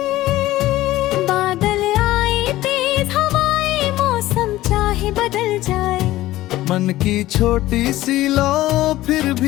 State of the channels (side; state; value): right; quieter; 16.1 dB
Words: बादल आए, तेज हवाएं, मौसम चाहे बदल जाए, मन की छोटी सी लौ फिर